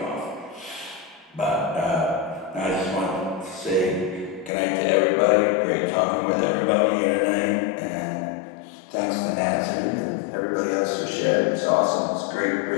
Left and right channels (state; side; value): drops out; right; at 4.5 s